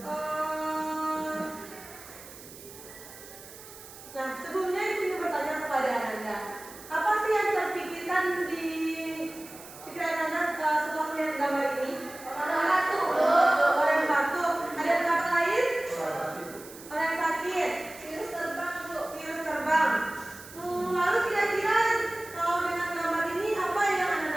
sebelumnya Ibu ingin bertanya kepada Anda, apa sih yang terpikirkan di pikiran Anda setelah melihat gambar ini? Orang batuk. Orang yang batuk. Ada pendapat lain? Orang yang sakit. Virus terbang, Bu. Virus terbang. Lalu kira-kira kalau dengan gambar ini apa yang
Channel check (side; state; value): right; noise; hiss, 17 dB below the sound